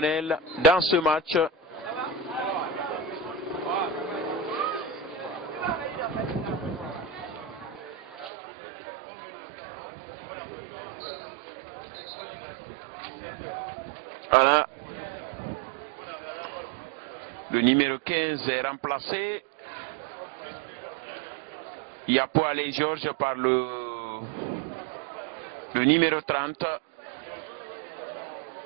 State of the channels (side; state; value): left; drops out; at 8.3 s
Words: dans ce match? Voilà. Le numéro 15 est remplacé. Yapo Alain Georges par le numéro 30.